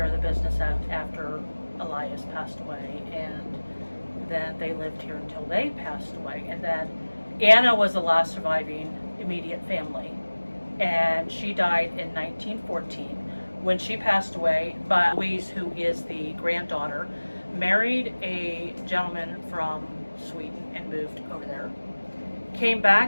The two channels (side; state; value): both; inverted; correlation -1.00